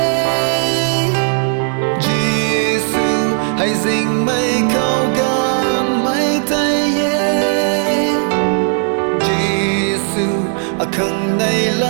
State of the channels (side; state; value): left; silent; 57 dB below the other